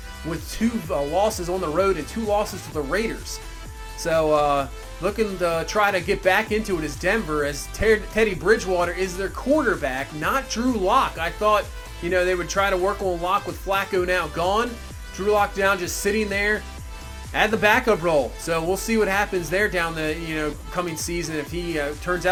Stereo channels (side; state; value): both; identical; correlation 1.00